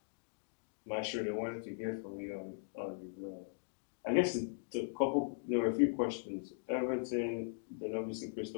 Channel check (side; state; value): right; silent; digital silence